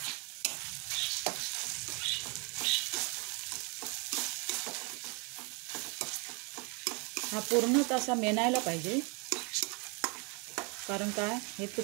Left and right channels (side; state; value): left; quieter; 32.8 dB